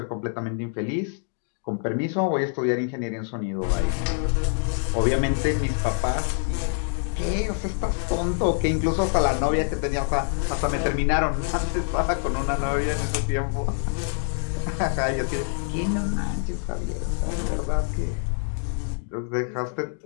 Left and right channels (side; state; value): right; silent; 61 dB below the other